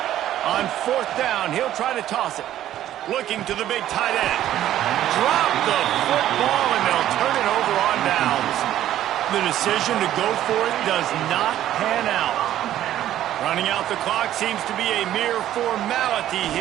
On 4th down, he'll try to toss it. Looking to the big tight end. Drop the football, and they'll turn it over on downs. The decision to go for it does not pan out. Running out the clock seems to be a mere formality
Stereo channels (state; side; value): quieter; left; 12.4 dB